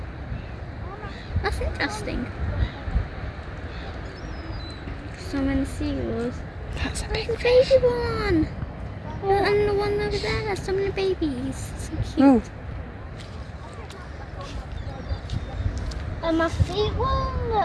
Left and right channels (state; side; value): identical; both; correlation 1.00